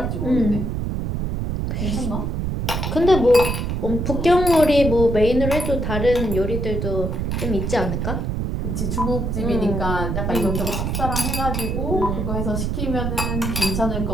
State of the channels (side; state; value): right; noise; rumble, 1 dB below the sound